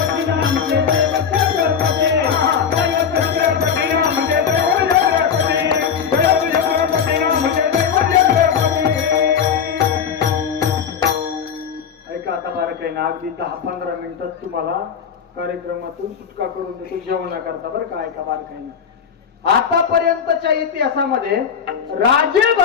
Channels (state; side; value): quieter; right; 7.3 dB